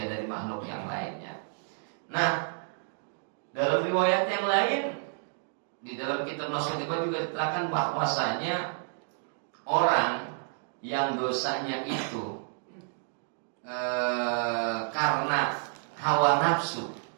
dari makhluk yang lainnya. Nah, dalam riwayat yang lain, di dalam kitab Nashotibah juga diterangkan bahwasanya orang yang dosanya itu karena hawa nafsu,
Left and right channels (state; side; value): silent; left; digital silence